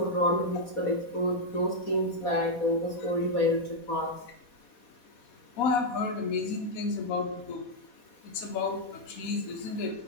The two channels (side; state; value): right; late; 4.2 ms